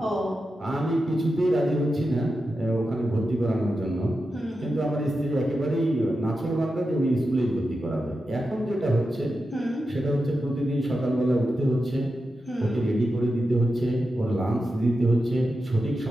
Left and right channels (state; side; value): normal; both; correlation 0.90